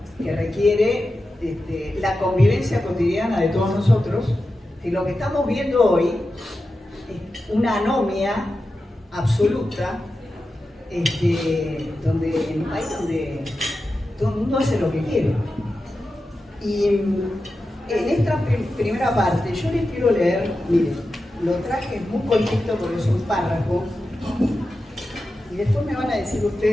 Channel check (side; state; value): both; normal; correlation 0.92